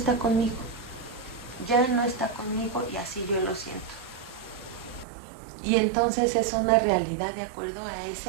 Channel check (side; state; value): left; drops out; at 5.1 s